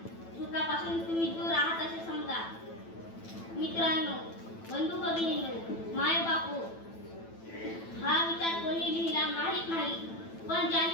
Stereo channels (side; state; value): right; late; 9.0 ms